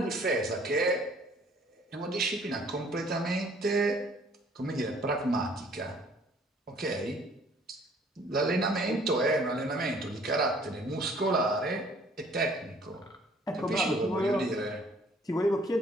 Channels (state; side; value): normal; both; correlation 0.58